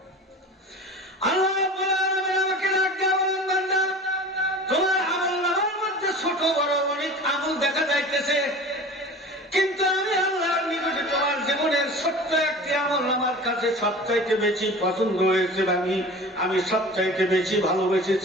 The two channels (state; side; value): normal; both; correlation 0.38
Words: আল্লাহ রাব্বুল আলামিন আমাকে ডাক দিয়ে বলেন, বান্দা তোমার আমলনামার মধ্যে ছোট বড় অনেক আমল দেখা যাইতেছে, কিন্তু আমি আল্লাহর নিকটে তোমার জীবনের ছোট্ট একটি আমল আমার কাছে সবচাইতে বেশি পছন্দ হয়েছে, আমি সবচাইতে বেশি